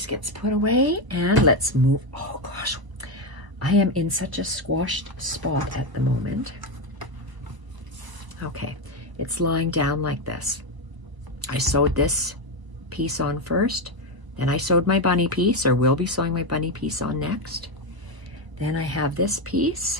gets put away, and let's move. Oh gosh, I am in such a squashed spot at the moment. Okay, it's lying down like this. I sewed this piece on first, then I sewed my bunny piece, or will be sewing my bunny piece on next. Then I have this piece,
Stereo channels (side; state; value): left; late; 1.0 ms